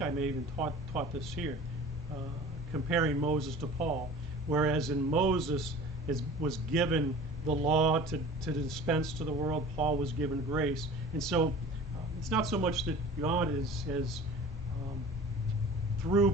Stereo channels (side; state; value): both; normal; correlation 0.41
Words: may even taught this here, comparing Moses to Paul. Whereas in Moses was given the law to dispense to the world, Paul was given grace. And so, it's not so much that God has through